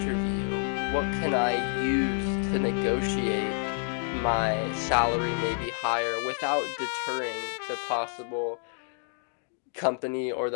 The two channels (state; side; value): silent; right; 59 dB below the other